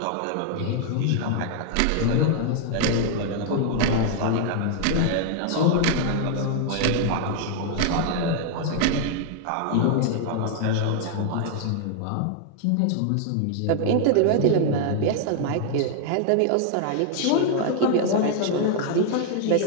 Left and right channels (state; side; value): different; both; correlation 0.00